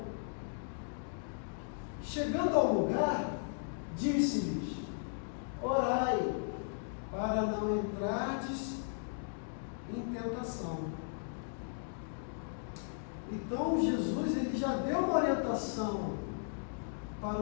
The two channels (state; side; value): silent; right; digital silence